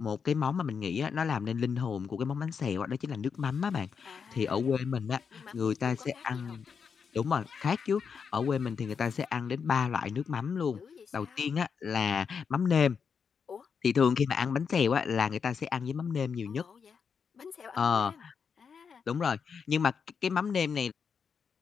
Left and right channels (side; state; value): right; quieter; 6.3 dB